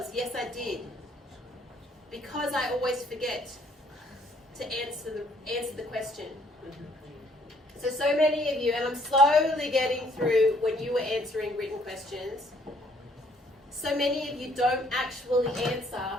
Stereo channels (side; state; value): both; normal; correlation 0.64